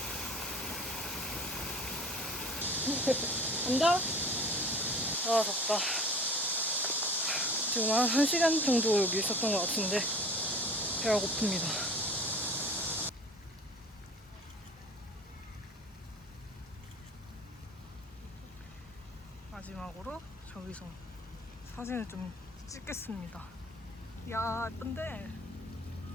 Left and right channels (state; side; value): normal; both; correlation 0.43